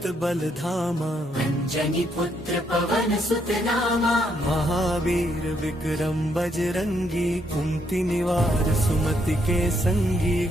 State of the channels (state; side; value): normal; both; correlation 0.74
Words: बल धामा, अंजनी पुत्र पवन सुत नामा। महावीर विक्रम बजरंगी, कुंती निवार सुमति के संगी।